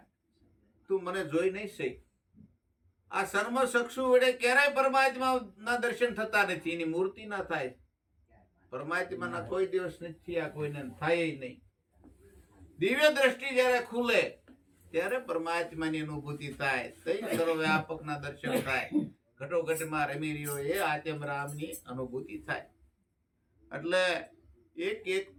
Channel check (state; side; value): identical; both; correlation 1.00